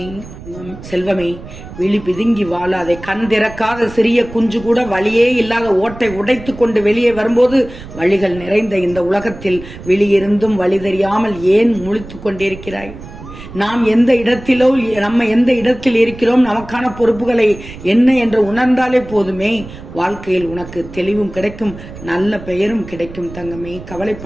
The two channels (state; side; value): noise; right; rumble, 15 dB below the sound